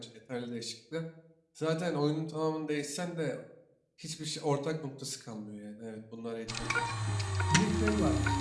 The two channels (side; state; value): both; identical; correlation 1.00